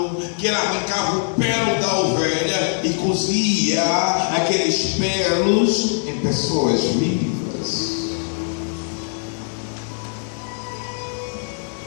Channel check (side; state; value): right; silent; 60 dB below the other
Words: que ele arrancava o pelo da ovelha e cozia aqueles pelos em pessoas vivas.